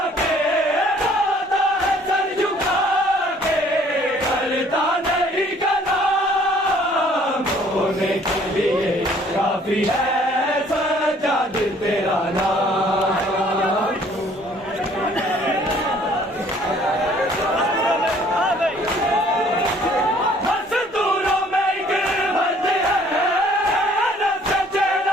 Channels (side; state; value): both; normal; correlation 0.58